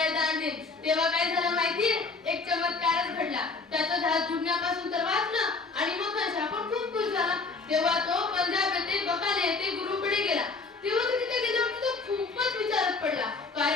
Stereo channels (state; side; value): quieter; right; 4.1 dB